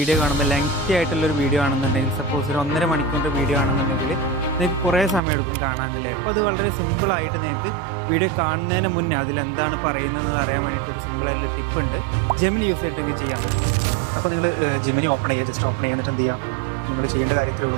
കാണുമ്പോൾ ലെങ്തി ആയിട്ടുള്ളൊരു വീഡിയോ ആണെന്നുണ്ടെങ്കിൽ, സപ്പോസ് ഒരു 1.5 മണിക്കൂറിൻ്റെ വീഡിയോ ആണെന്നുണ്ടെങ്കിൽ നിങ്ങൾക്ക് കുറേ സമയം എടുക്കും കാണാനില്ലേ. അപ്പോൾ അത് വളരെ സിമ്പിളായിട്ട് നിങ്ങൾക്ക് വീഡിയോ കാണുന്നതിന് മുന്നേ അതിലെന്താണ് പറയുന്നതെന്ന് അറിയാൻ വേണ്ടിയിട്ട് ഒരു സിമ്പിളായിട്ടുള്ള ടിപ്പ് ഉണ്ട്. ജെമിനി യൂസ് ചെയ്തിട്ടെങ്കിൽ ചെയ്യാൻ പറ്റും. അപ്പോൾ നിങ്ങൾ ജെമിനി ഓപ്പൺ ചെയ്യുക, ജസ്റ്റ് ഓപ്പൺ ചെയ്യുന്നിട്ട് എന്ത് ചെയ്യുക, നിങ്ങൾ ചെയ്യേണ്ട കാര്യത്തിലേ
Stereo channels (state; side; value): drops out; left; at 5.2 s